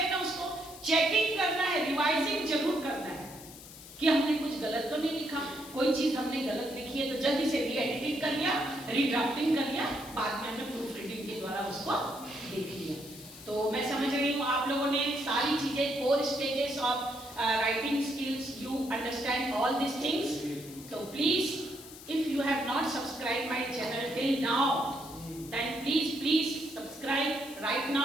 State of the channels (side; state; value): left; noise; hiss, 16 dB below the sound